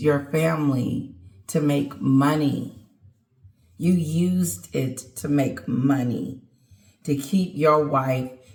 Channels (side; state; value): both; identical; correlation 1.00